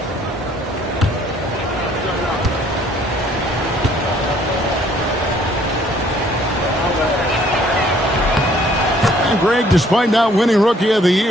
Greg, despite not winning Rookie of the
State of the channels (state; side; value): normal; both; correlation 0.61